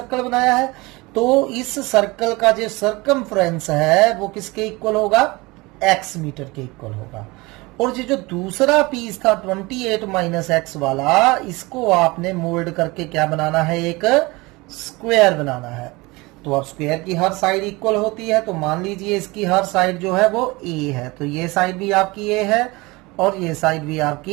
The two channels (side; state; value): left; quieter; 23.4 dB